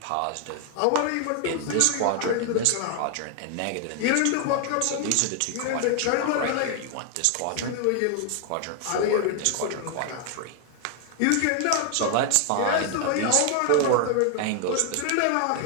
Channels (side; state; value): both; different; correlation 0.00